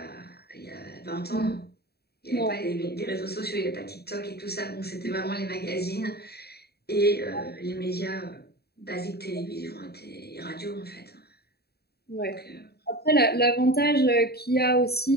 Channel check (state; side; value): late; right; 0.47 ms